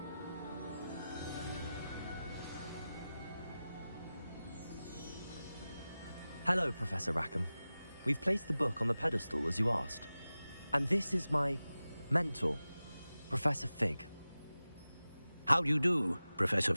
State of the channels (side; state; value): both; inverted; correlation -0.95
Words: Hello, Professor Rackham. We've placed the book on the pedestal as you asked. And this is my mentor, Professor Fig. How do you do, Professor